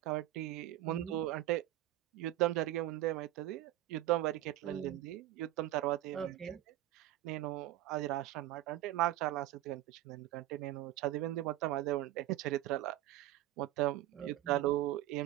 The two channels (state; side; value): quieter; left; 14.6 dB